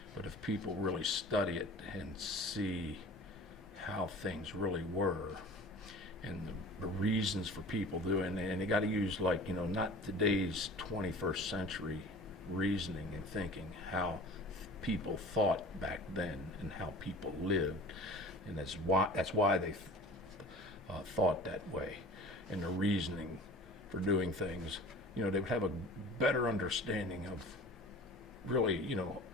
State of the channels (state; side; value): normal; both; correlation 0.41